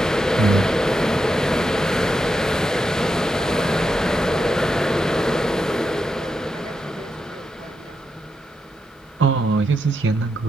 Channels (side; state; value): both; normal; correlation 0.85